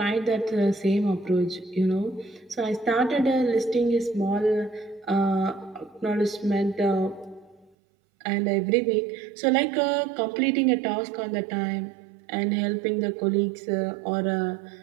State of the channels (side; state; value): left; drops out; at 7.7 s